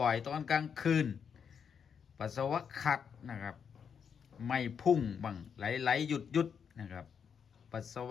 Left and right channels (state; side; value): quieter; right; 7.1 dB